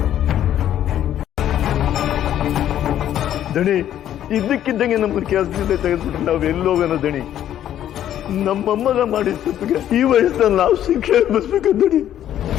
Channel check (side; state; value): right; quieter; 11.2 dB